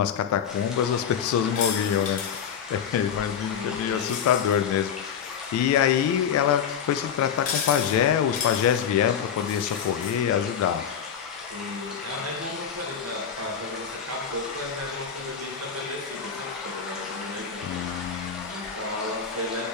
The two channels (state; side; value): quieter; right; 7.8 dB